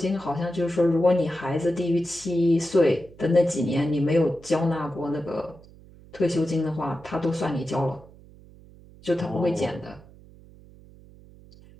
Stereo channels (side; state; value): right; noise; hum, 23 dB below the sound